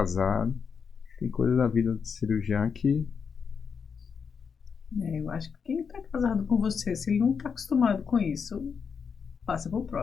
Tem coisa da vida de cirurgião que... Eu acho que quem está casado com você, se ele não está acostumado com isso, passa para o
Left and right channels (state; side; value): quieter; right; 6.2 dB